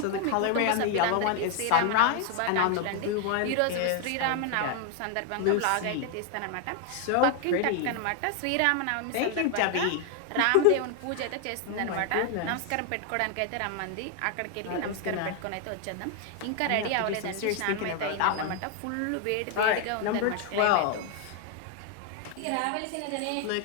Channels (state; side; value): different; both; correlation 0.00